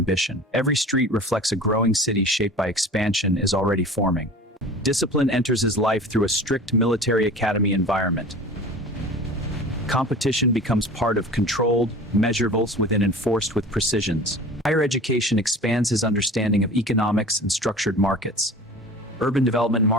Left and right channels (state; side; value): normal; both; correlation 0.39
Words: Every street reflects a growing city shaped by expansion is already forming. Discipline enters his life through a strict military academy environment. Competition becomes part of controlled, measurables within enforced with precisions. Higher education expands his understanding of economics and structured markets. Urban development